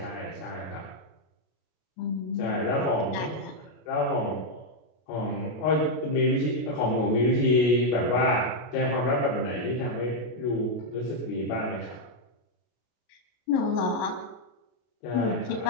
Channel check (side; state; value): right; late; 33 ms